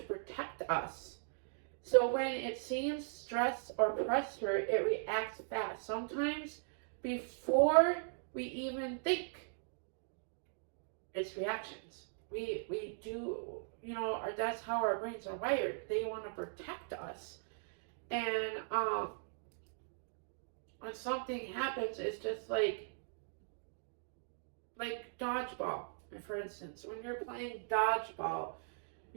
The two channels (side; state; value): left; silent; digital silence